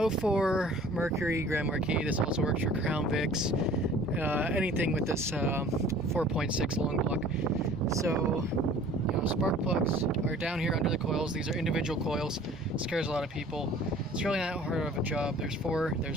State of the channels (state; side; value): normal; both; correlation 0.49